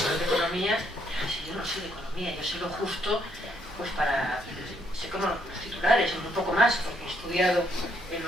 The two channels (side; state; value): both; normal; correlation 0.72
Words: de economía, si yo no soy de economía, yo sé lo justo, pues sé como los titulares, un poco más, porque he estudiado en